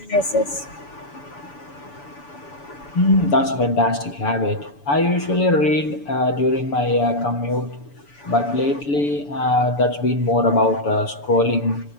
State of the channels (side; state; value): right; late; 6.9 ms